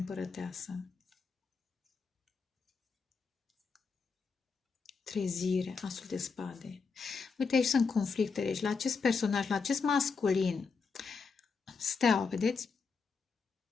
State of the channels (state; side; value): quieter; right; 5.1 dB